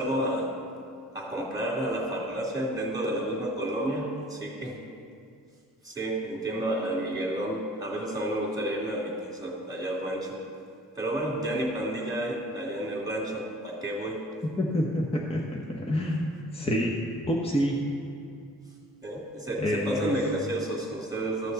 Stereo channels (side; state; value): both; normal; correlation 0.51